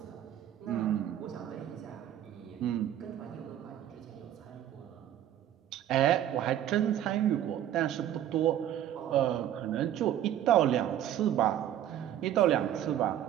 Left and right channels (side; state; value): left; quieter; 11.4 dB